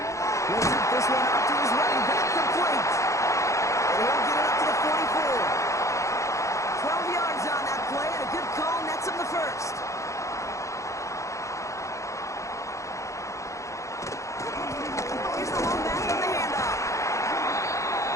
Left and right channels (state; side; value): late; right; 0.15 ms